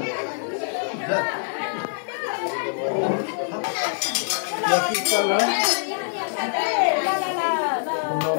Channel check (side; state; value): right; silent; digital silence